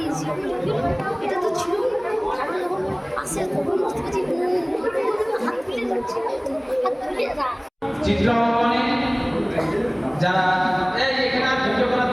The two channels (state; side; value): identical; both; correlation 1.00